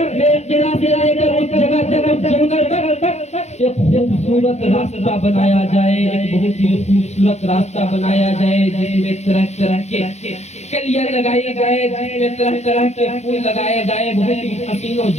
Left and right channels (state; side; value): late; right; 0.32 ms